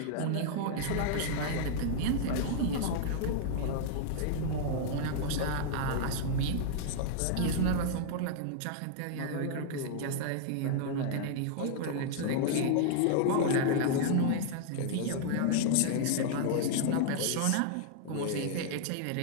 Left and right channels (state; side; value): different; both; correlation -0.01